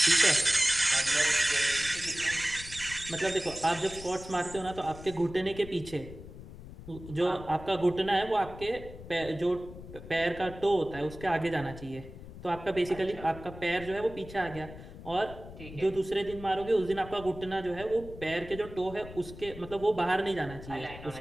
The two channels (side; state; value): left; noise; rumble, 14 dB below the sound